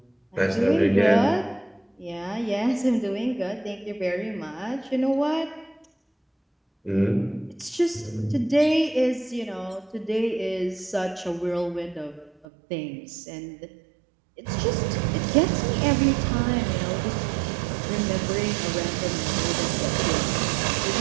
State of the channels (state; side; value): drops out; left; at 12.5 s